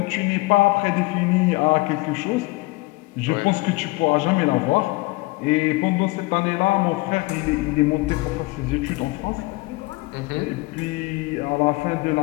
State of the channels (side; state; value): right; quieter; 23.3 dB